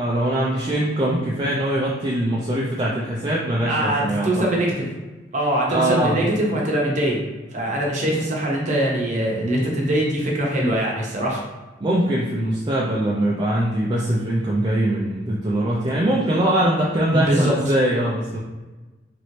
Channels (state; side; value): normal; both; correlation 0.59